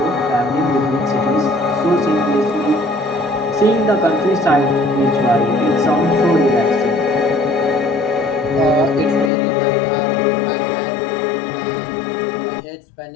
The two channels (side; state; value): right; drops out; at 9.3 s